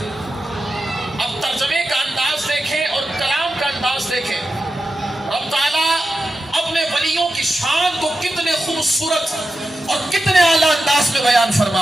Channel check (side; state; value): both; normal; correlation 0.90